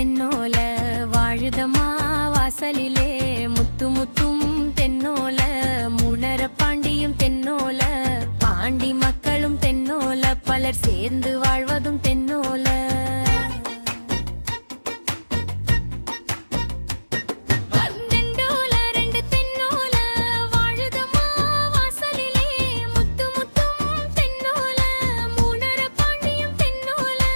வாழுதமா வாசலிலே முத்து முத்தும் தென்னோல முனர பாண்டியும் தென்னோல பாண்டி மக்களும் தென்னோல பலர் சேர்ந்து வாழ்வதும் தென்னோல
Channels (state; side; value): inverted; both; correlation -1.00